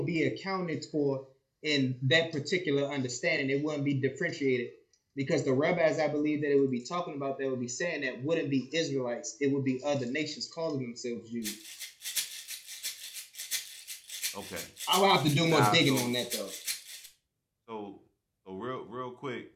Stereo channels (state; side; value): identical; both; correlation 1.00